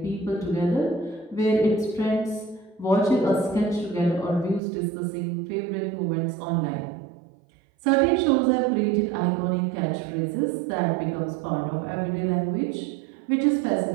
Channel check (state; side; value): drops out; left; at 4.6 s